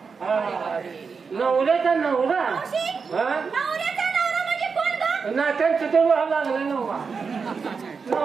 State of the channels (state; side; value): quieter; left; 5.3 dB